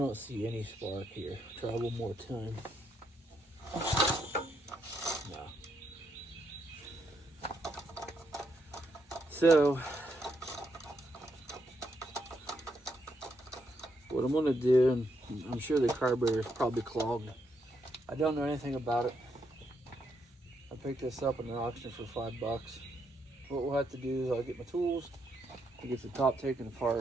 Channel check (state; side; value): normal; both; correlation 0.78